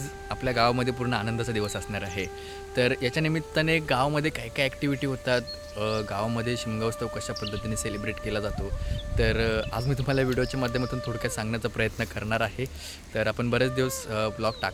आपल्या गावामध्ये पूर्ण आनंदाचा दिवस असणार आहे. तर याच्या निमित्ताने गावामध्ये काय काय ॲक्टिव्हिटी होतात, गावामध्ये शिमगा उत्सव कशा पद्धतीने सेलिब्रेट केला जातो, तर आज मी तुम्हाला व्हिडिओच्या माध्यमातून थोडक्यात सांगण्याचा प्रयत्न करणार आहे. तर आपण बरेच दिवस ब्लॉग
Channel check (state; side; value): identical; both; correlation 1.00